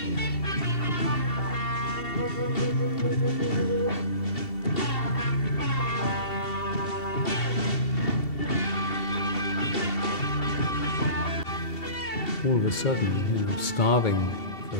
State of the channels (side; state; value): right; late; 2.7 ms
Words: All of a sudden, starving for a